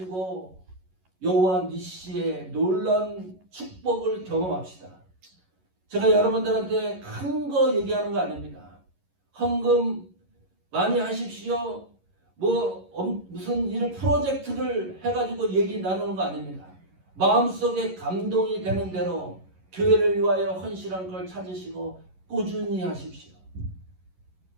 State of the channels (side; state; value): left; late; 11 ms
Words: 여호와 니시의 놀라운 축복을 경험합시다. 제가 여러분들한테 큰 거 얘기하는 거 아닙니다. 헌금 많이 하십시오. 무슨 일을 프로젝트를 해가지고 얘기 나누는 거 아닙니다. 마음속에 감동이 되는 대로 교회를 위하여 헌신한 걸 찾으시고 꾸준히 하십시오.